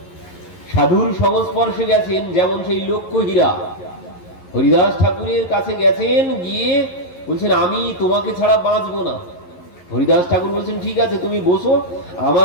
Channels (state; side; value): late; right; 11 ms